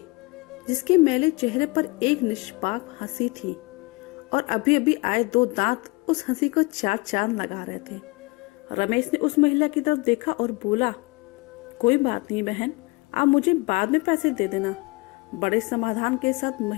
जिसके मैले चेहरे पर एक निष्पाप हंसी थी और अभी अभी आए 2 दांत उस हंसी को 4 चांद लगा रहे थे। रमेश ने उस महिला की तरफ देखा और बोला, कोई बात नहीं बहन, आप मुझे बाद में पैसे दे देना। बड़े समाधान के साथ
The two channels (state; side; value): quieter; right; 25.8 dB